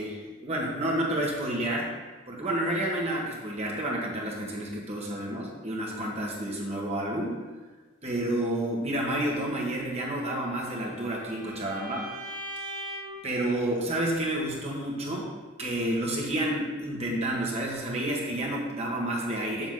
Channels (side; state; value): both; normal; correlation 0.40